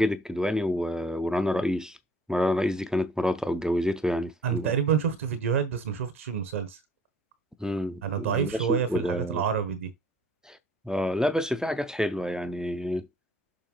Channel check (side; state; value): both; normal; correlation 0.54